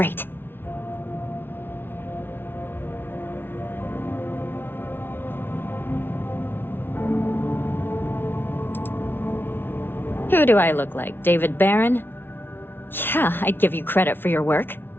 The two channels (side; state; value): right; late; 0.10 ms